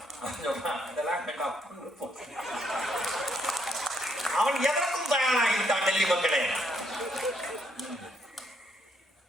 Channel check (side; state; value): both; normal; correlation 0.73